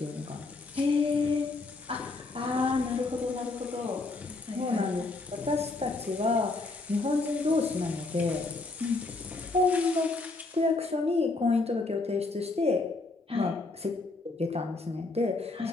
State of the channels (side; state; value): right; quieter; 3.4 dB